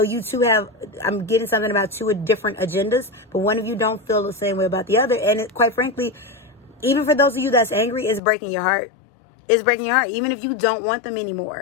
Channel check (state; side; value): drops out; right; at 8.2 s